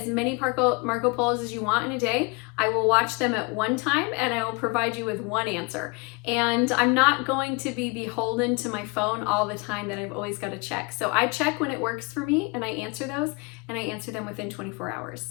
many Marco Polos as you want in a day. I will watch them at one time and I will provide you with one answer. And I'm not going to be beholden to my phone all the time that I've always got to check. So I check when it works for me and I answer those, and I answer them within 24 hours.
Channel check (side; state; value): right; quieter; 28.2 dB